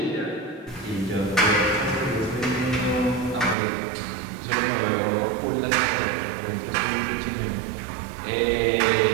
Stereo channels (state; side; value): drops out; left; at 3.6 s